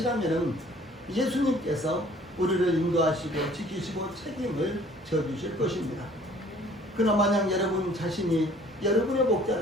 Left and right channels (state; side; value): normal; both; correlation 0.55